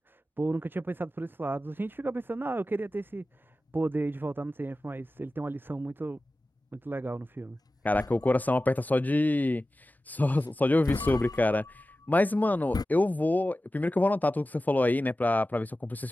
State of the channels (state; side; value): normal; both; correlation 0.95